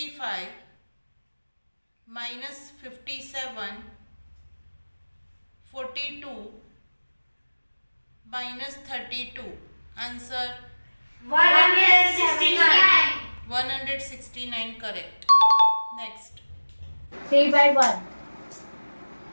minus 57, 42, minus 32. Answer 169. 169 correct. Next. 3 by 1.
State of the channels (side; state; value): both; inverted; correlation -1.00